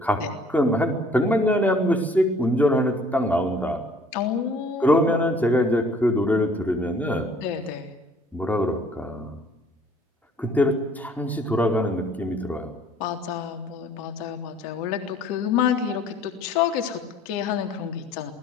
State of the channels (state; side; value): normal; both; correlation 0.56